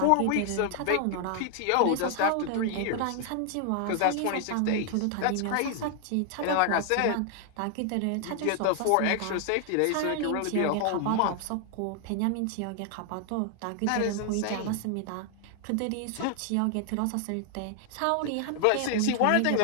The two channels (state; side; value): different; both; correlation 0.00